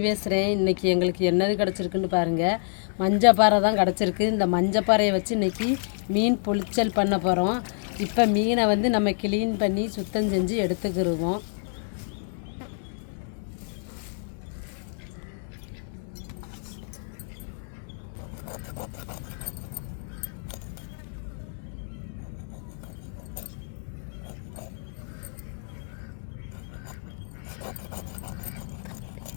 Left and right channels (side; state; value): right; silent; 60 dB below the other